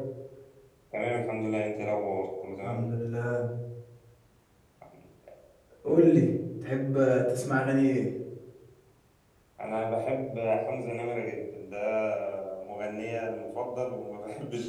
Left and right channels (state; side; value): identical; both; correlation 1.00